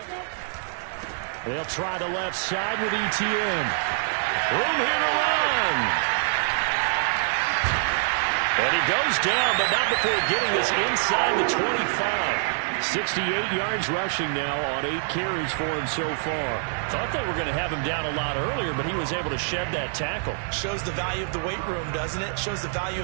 They'll try the left side with Etienne. Room here to run. And he goes down, but not before getting this inside the 25. 68 yards rushing now on 8 carries for him so far. Thought they were going to have him down a lot earlier, but he was able to shed that tackle. Shows the value of the weight room, doesn't it? Shows the value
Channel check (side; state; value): left; silent; digital silence